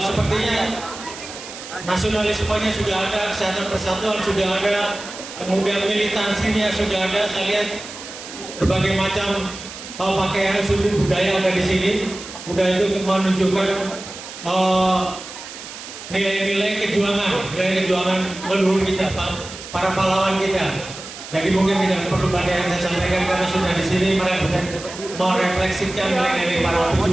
sepertinya nasionalismenya sudah ada, kesehatan persatuan sudah ada, kemudian militansinya sudah ada. Saya lihat berbagai macam pakaian suku budaya ada di sini. Udah itu menunjukkan nilai-nilai kejuangan leluhur kita, para pahlawan kita. Jadi mungkin tidak perlu banyak yang saya sampaikan karena sudah di sini merefleksikan nilai-nilai para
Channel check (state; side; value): noise; right; hiss, 13 dB below the sound